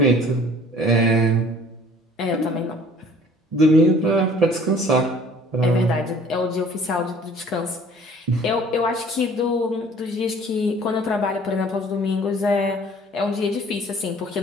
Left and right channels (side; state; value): both; normal; correlation 0.52